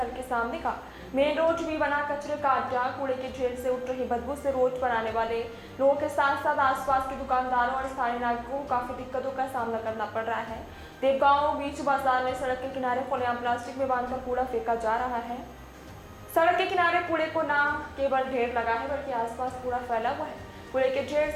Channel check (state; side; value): identical; both; correlation 1.00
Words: के सामने का मेन रोड भी बना कचरे का अड्डा। कूड़े के ढेर से उठ रही बदबू से रोड पर आने वाले लोगों के साथ साथ आसपास के दुकानदारों और स्थानीय नागरिकों को काफी दिक्कतों का सामना करना पड़ रहा है। देवगांव बीच बाजार में सड़क के किनारे खुलेआम प्लास्टिक में बांधकर कूड़ा फेंका जा रहा है। सड़क के किनारे कूड़े को न केवल ढेर लगा है बल्कि आसपास कूड़ा फैला हुआ है। कूड़े के ढेर